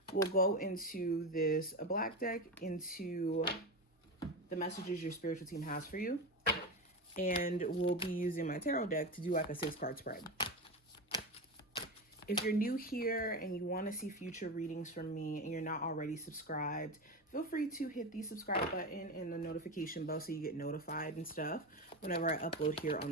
We'll go into this black deck, into the messages your spiritual team has for you. And we'll be using my tarot deck to do like a 6-card spread. If you're new here and you want to see future readings from me and you're not already subscribed, feel free to hit the subscribe button and the notification bell so you get notified and stuff whenever I upload here on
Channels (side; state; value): both; normal; correlation 0.19